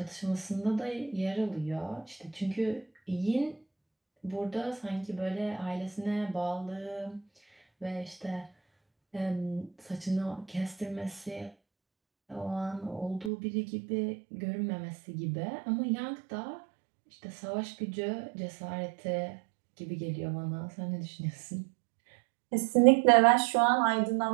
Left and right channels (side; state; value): left; drops out; at 13.3 s